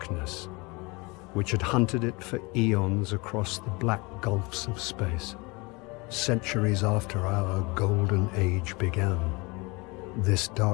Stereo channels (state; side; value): quieter; right; 26.4 dB